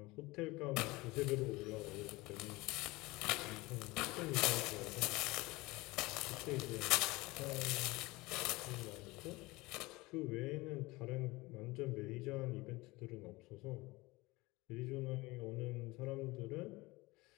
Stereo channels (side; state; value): right; quieter; 21.9 dB